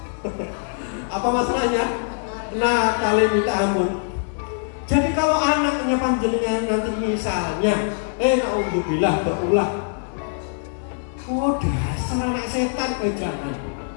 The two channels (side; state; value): right; silent; 64 dB below the other